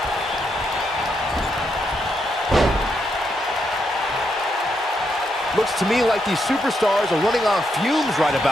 Looks to me like these superstars are running on fumes right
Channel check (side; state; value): both; normal; correlation 0.80